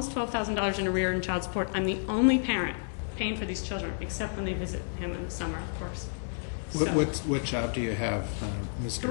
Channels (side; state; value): right; silent; digital silence